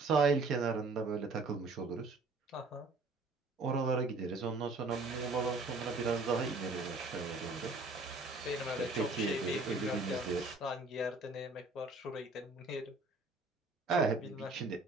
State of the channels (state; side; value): quieter; left; 3.3 dB